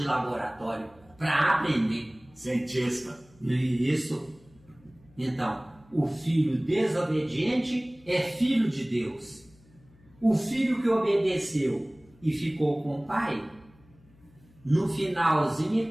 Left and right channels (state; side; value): noise; left; hum, 28 dB below the sound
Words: laboratório, para aprender. Cientista. Isso. Então, o filho desobediente é filho de Deus. O filho que obedeceu e ficou com o pai, no finalzinho